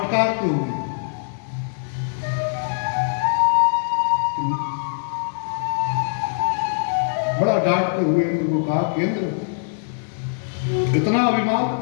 हुए बड़ा डांटते हुए इंद्र को कहा कि इंद्र, इतना अभिमान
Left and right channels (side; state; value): right; silent; digital silence